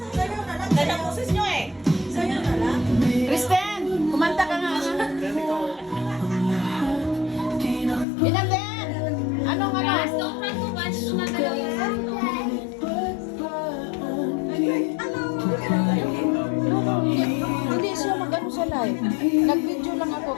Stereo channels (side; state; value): right; drops out; at 8.1 s